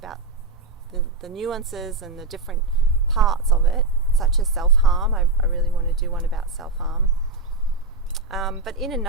the nuances and the different parts of it, such as self-harm. I really want to do one about self-harm. But in a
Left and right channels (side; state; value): left; quieter; 3.5 dB